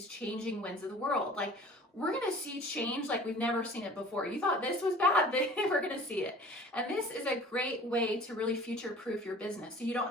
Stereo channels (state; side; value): normal; both; correlation 0.45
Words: changing winds of the world. Like, we're going to see change like we've never seen it before. You thought this was bad, we're going to see it. And this is a great way to really future-proof your business. So you don't